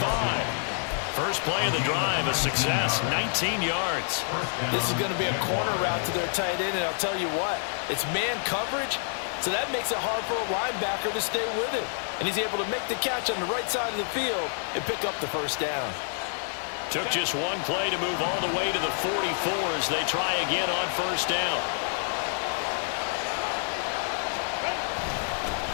First play of the drive, a success, 19 yards. This is going to be a corner route to their tight end, and I'll tell you what, it's man coverage, so that makes it hard for a linebacker to stay with him. And he's able to make the catch on the right side of the field and pick up the first down. Took just one play to move all the way to the 44 as they try again on first down.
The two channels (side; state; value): right; silent; digital silence